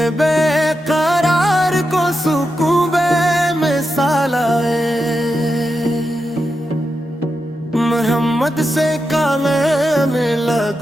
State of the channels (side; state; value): both; normal; correlation 0.88